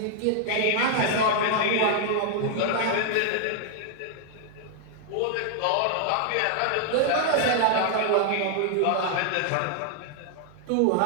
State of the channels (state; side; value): different; both; correlation 0.00